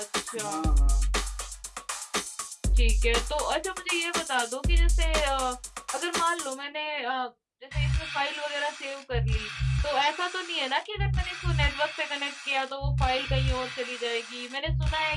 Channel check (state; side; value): identical; both; correlation 1.00